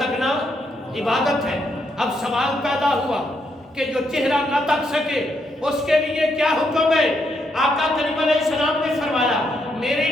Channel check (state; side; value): normal; both; correlation 0.77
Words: عبادت ہے۔ اب سوال پیدا ہوا کہ جو چہرہ نہ تک سکے اس کے لیے کیا حکم ہے؟ آقا کریم علیہ السلام نے فرمایا میرے